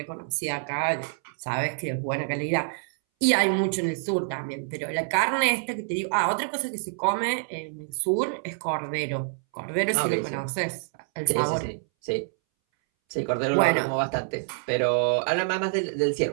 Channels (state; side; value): silent; left; 60 dB below the other